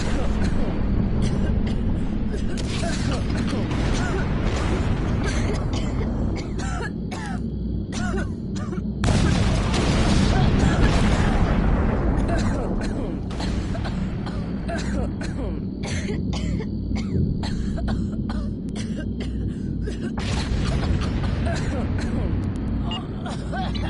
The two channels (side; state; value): both; identical; correlation 1.00